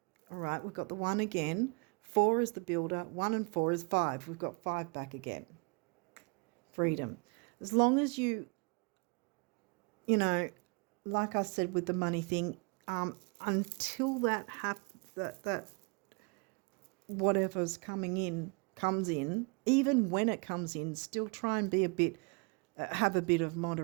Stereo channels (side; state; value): left; quieter; 32.3 dB